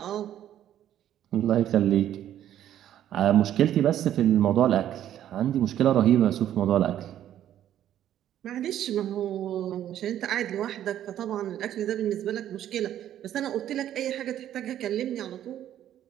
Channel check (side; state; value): left; quieter; 11.4 dB